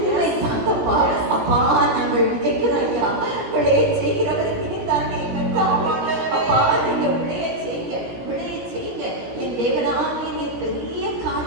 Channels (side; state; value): left; late; 17 ms